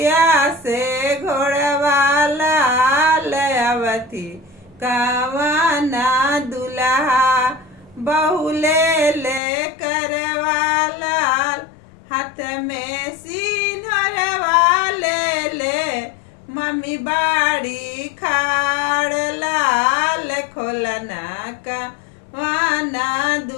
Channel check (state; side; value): drops out; right; at 9.4 s